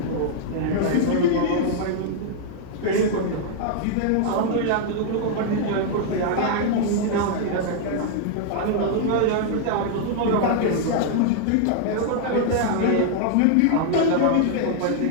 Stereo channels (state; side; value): different; both; correlation -0.01